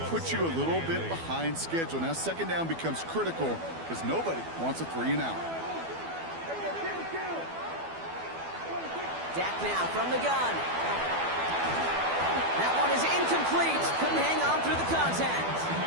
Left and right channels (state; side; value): late; left; 12 ms